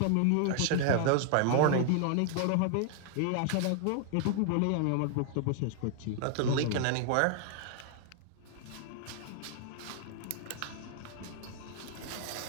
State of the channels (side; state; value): both; different; correlation 0.00